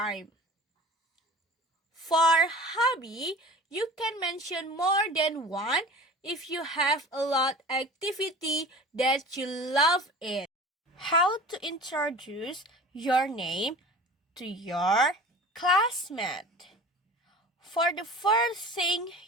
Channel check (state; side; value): normal; both; correlation 0.40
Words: For hobby, you can mention more than one if you have a lot activity that you love it. How to introduce your name to your classmate. For the first thing,